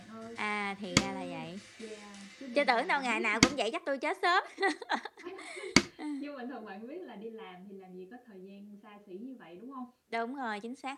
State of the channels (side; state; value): both; identical; correlation 1.00